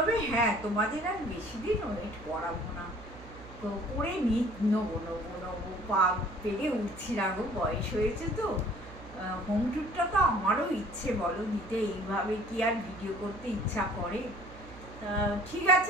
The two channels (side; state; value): right; noise; hum, 18 dB below the sound